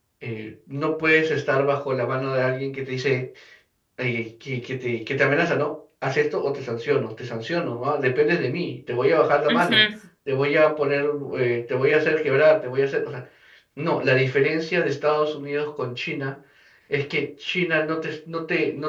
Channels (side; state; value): both; identical; correlation 1.00